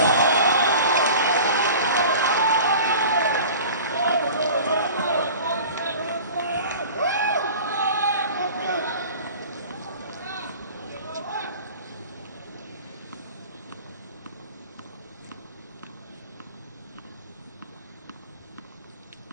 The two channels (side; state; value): both; inverted; correlation -0.40